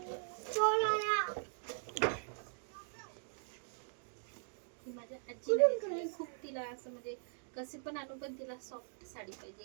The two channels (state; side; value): silent; left; digital silence